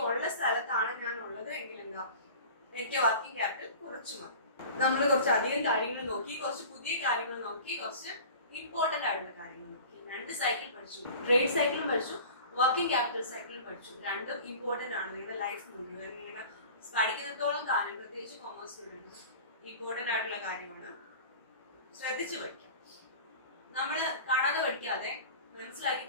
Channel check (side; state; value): both; inverted; correlation -0.40